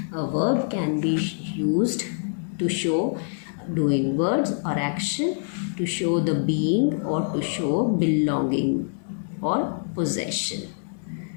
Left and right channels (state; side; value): silent; right; digital silence